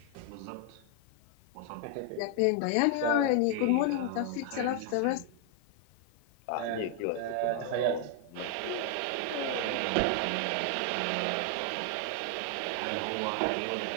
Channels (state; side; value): different; both; correlation 0.00